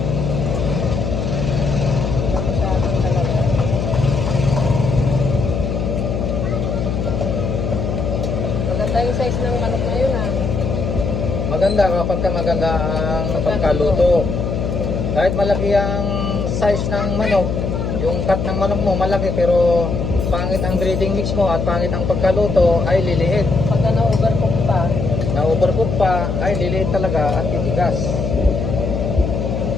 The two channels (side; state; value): left; noise; hum, 2 dB below the sound